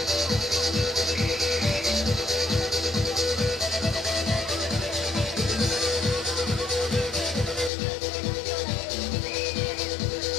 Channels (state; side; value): drops out; right; at 7.7 s